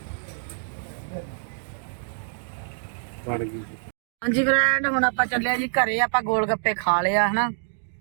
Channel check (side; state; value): left; silent; digital silence